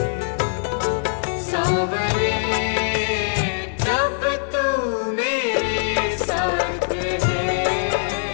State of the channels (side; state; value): right; silent; 64 dB below the other